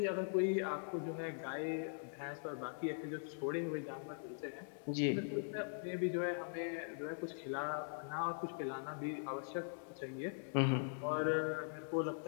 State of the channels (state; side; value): silent; right; digital silence